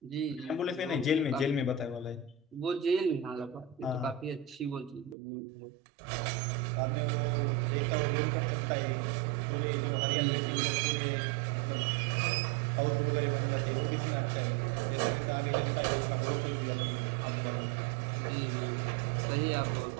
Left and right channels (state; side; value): drops out; left; at 5.2 s